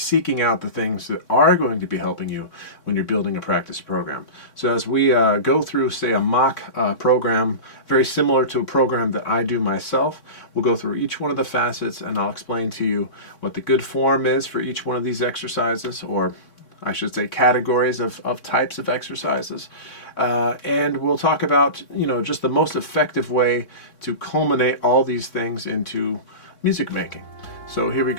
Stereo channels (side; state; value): right; late; 4.0 ms